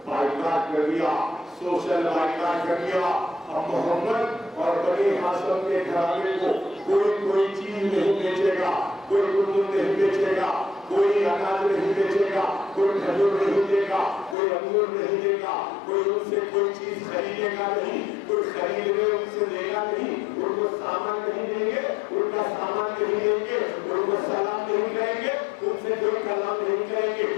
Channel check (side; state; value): right; drops out; at 14.4 s